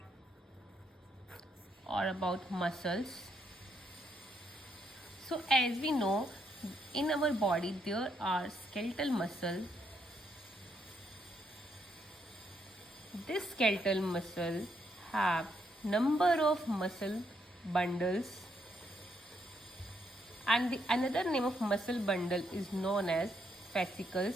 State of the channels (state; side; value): normal; both; correlation 0.76